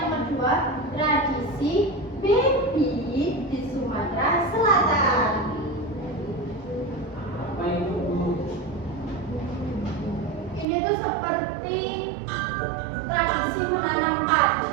kedua, tradisi baby di Sumatera Selatan. Apa itu? Ini tuh seperti tradisi menanam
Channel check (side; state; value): left; drops out; at 10.7 s